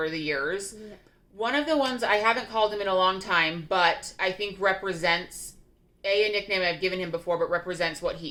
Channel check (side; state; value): both; identical; correlation 1.00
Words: the years. Yeah. One of the ones I haven't called him in a long time, but I think represents a nickname I've given him before, but represents what